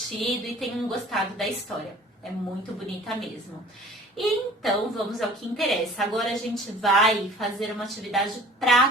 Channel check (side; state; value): both; normal; correlation 0.48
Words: e tenham gostado da história. É muito bonita mesmo. E então, vamos ao que interessa. Agora a gente vai fazer uma atividade